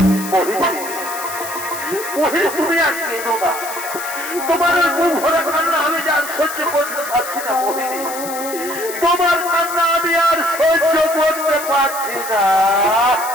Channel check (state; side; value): noise; left; hiss, 10 dB below the sound